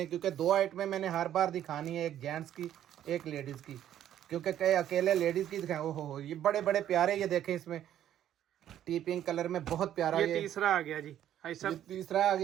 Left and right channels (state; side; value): quieter; left; 11.2 dB